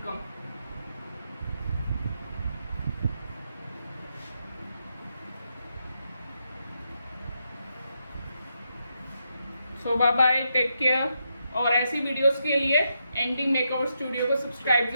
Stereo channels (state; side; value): inverted; both; correlation -0.82